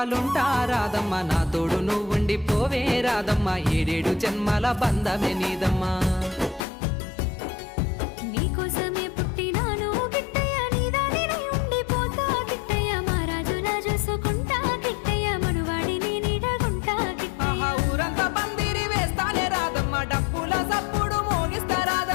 రాదమ్మ, నా తోడు నువ్వుండి పోవే రాదమ్మ, ఏడేడు జన్మల బంధమే నీదమ్మా. నీకోసమే పుట్టినాను గిట్టయ్య, నీదానినే ఉండిపోతా గిట్టయ్య, మా రాజులా చూసుకుంటా గిట్టయ్య, మనువాడిని నీడగుంటా గిట్టయ్య. ఆహా ఊరంతా పందిరి వేస్తానే రాదమ్మ, డప్పుల సప్పుడు మోగిస్తా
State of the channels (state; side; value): drops out; right; at 6.7 s